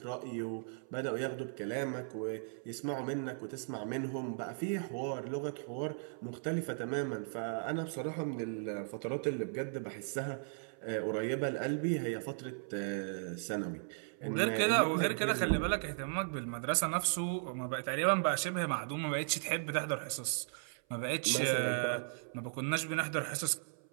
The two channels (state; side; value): silent; left; 53 dB below the other